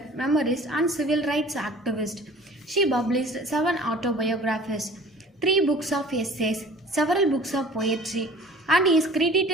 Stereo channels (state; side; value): normal; both; correlation 0.47